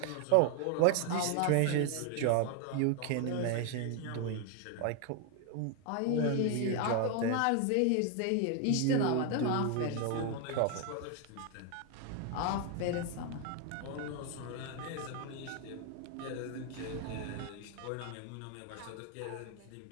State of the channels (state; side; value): different; both; correlation 0.01